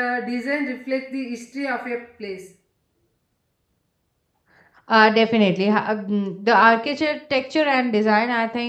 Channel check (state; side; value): identical; both; correlation 1.00